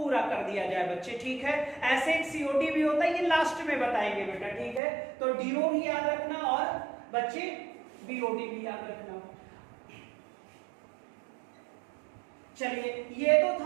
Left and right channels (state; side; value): drops out; left; at 4.8 s